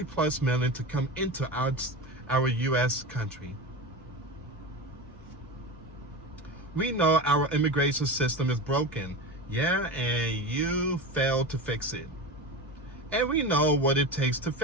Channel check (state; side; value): normal; both; correlation 0.25